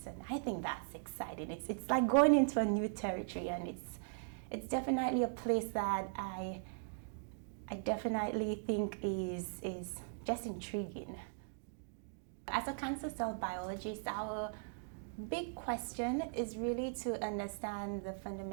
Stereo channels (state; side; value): silent; left; digital silence